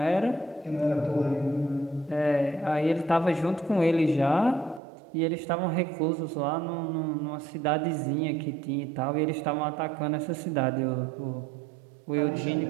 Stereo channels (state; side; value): drops out; left; at 4.8 s